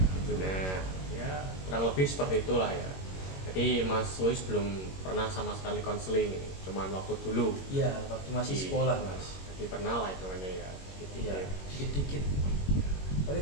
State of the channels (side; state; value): right; late; 21 ms